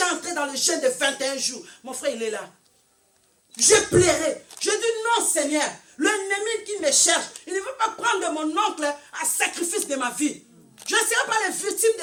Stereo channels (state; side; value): identical; both; correlation 1.00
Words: entré dans le jeûne de 21 jours. Mon frère, il est là. Je pleurais. Je dis non, Seigneur. L'ennemi qui me cherche, il ne veut pas prendre mon oncle à sacrifice de ma vie. Je ne serai pas les victimes